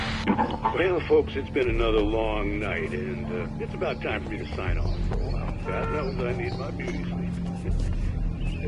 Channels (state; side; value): identical; both; correlation 1.00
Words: Well, folks, it's been another long night, and it's about time for me to sign off for a while. God knows I need my beauty sleep.